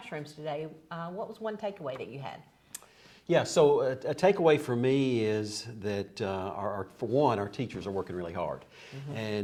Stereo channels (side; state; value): both; identical; correlation 1.00